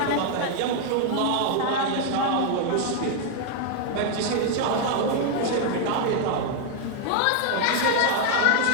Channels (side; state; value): both; different; correlation 0.00